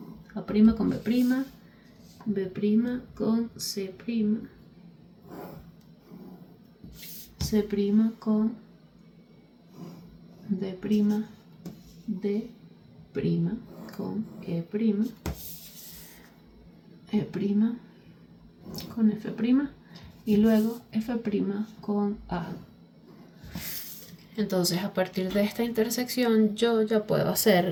A' con B', B' con C', C' con D', D' con E', E' con F' y luego F' con A. Entonces a partir de esta intersección yo ya puedo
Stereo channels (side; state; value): both; identical; correlation 1.00